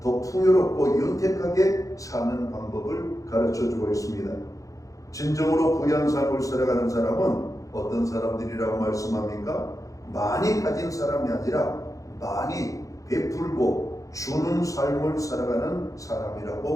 더 풍요롭고 윤택하게 사는 방법을 가르쳐주고 있습니다. 진정으로 부유한 삶을 살아가는 사람은 어떤 사람들이라고 말씀합니까? 많이 가진 사람이 아니라 많이 베풀고 주는 삶을 살아가는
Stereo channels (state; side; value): late; right; 0.16 ms